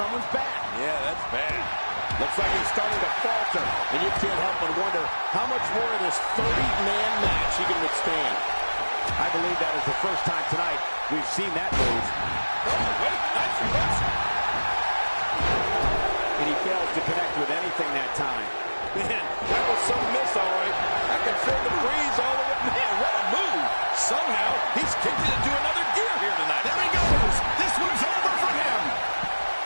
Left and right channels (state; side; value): inverted; both; correlation -1.00